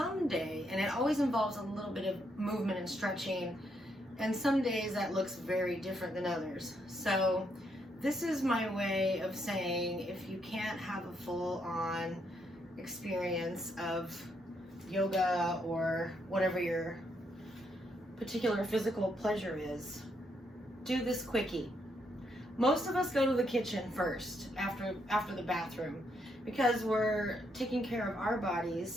and it always involves a little bit of movement and stretching, and some days that looks very different than others. So this is my way of saying if you can't have a full-on experience of yoga or whatever your particular physical pleasure is, do this quickie. Most of us go to the kitchen first after the bathroom because we're taking care of our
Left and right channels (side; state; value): both; normal; correlation 0.76